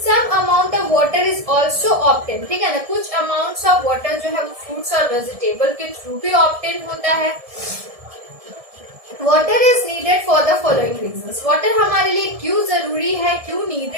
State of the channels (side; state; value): left; late; 1.7 ms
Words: Some amount of water is also obtain. ठीक है ना, कुछ अमाउंट्स ऑफ वाटर जो है वो फ्रूट्स और वेजिटेबल के थ्रू भी ऑब्टेन होता है. Water is needed for the following reasons. Water हमारे लिए क्यों जरूरी है, क्यों